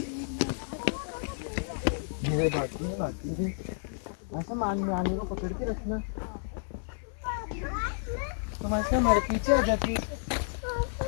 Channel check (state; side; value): silent; right; digital silence